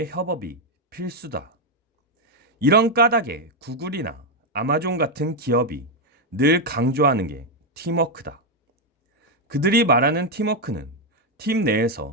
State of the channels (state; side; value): normal; both; correlation 0.03